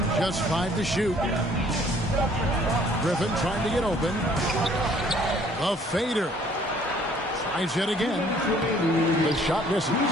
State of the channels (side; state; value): both; normal; correlation 0.58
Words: Just 5 to shoot. Griffin trying to get open. A fader. Tries yet again. The shot misses.